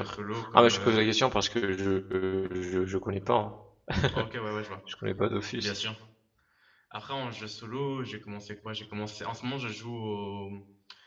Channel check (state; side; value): identical; both; correlation 1.00